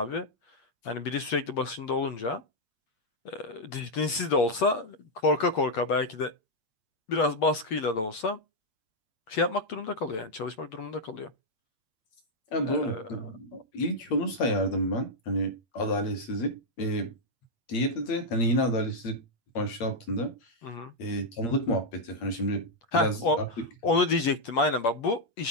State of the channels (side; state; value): right; late; 9.1 ms